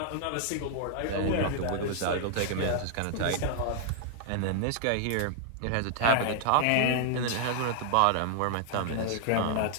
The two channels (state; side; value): different; both; correlation 0.00